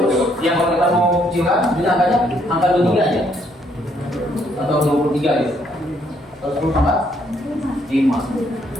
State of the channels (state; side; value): normal; both; correlation 0.70